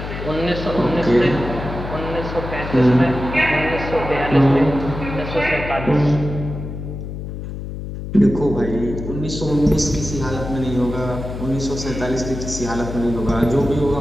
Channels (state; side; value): noise; left; hum, 8 dB below the sound